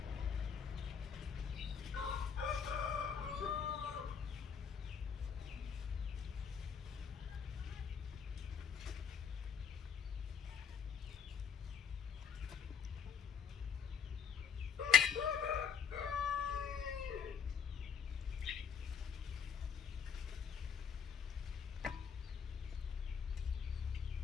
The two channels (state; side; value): quieter; right; 6.6 dB